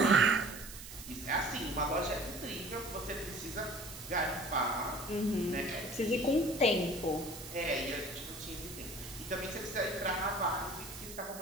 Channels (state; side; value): noise; right; hiss, 13 dB below the sound